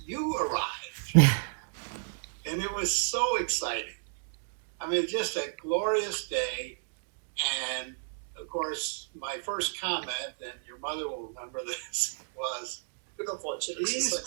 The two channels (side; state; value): left; silent; digital silence